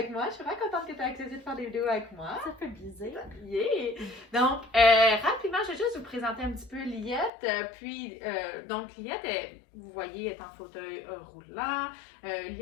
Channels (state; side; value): drops out; right; at 7.3 s